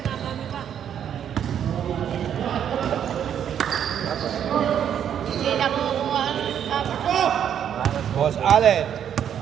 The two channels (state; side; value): quieter; left; 9.2 dB